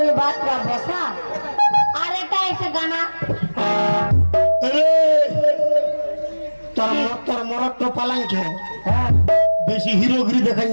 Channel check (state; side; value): inverted; both; correlation -1.00